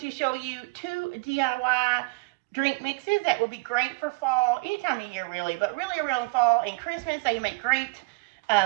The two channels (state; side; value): quieter; left; 27.7 dB